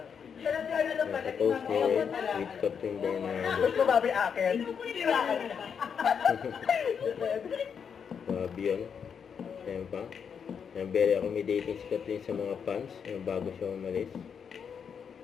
Nakapost ni with Catherine Bernardo. Gusto babi akin. Babi yun. Ayan pa. Ayan, very accommodating si Catherine sa mga fans. Ayan, bago siya umalis.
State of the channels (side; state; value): right; quieter; 7.0 dB